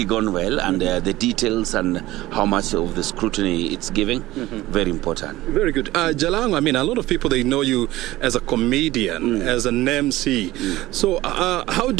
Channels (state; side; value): quieter; left; 17.2 dB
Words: gone well, and the details and how much of the scrutiny it's giving, very important. Very good. Jalango, I mean, a lot of people, they know you as a comedian, as an MC. So how